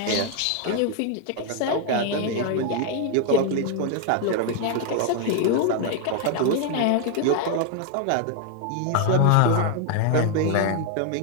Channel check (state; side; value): different; both; correlation 0.01